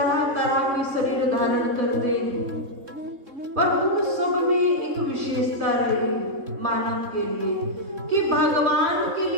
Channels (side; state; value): left; late; 3.7 ms